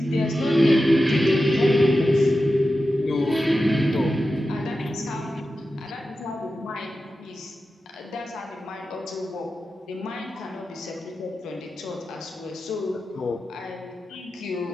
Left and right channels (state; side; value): normal; both; correlation 0.92